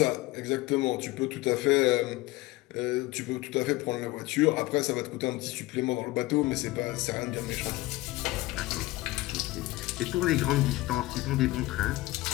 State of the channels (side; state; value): right; quieter; 19.3 dB